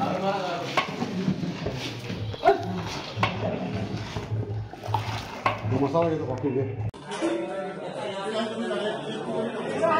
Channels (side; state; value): both; identical; correlation 1.00